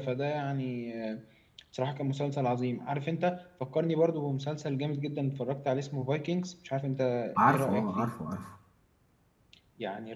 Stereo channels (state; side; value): identical; both; correlation 1.00